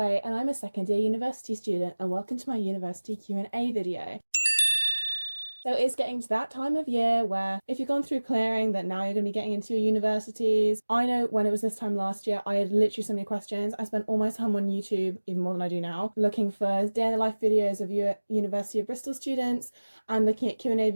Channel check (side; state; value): both; inverted; correlation -1.00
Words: and I'm a second year university student, and welcome to my university Q&A video. So it's getting to that time of year where if you've gone through clearing, that now you're going to be getting into your universities. I know when it was this time last year, I had literally so many questions. I spent all my time on YouTube, even more than I do now, looking for day in the life videos of University of Bristol students and looking at Q&A